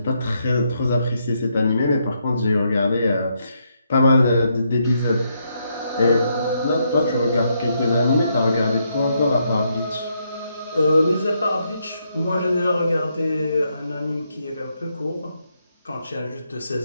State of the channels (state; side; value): inverted; both; correlation -0.78